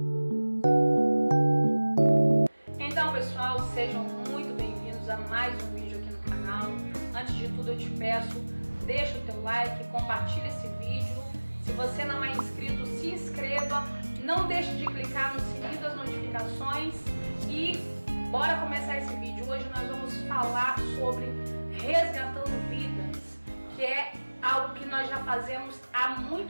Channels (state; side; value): inverted; both; correlation -1.00